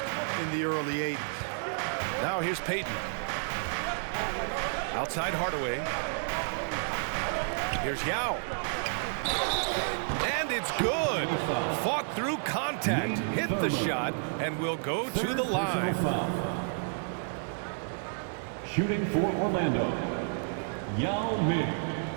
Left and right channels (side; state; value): left; silent; digital silence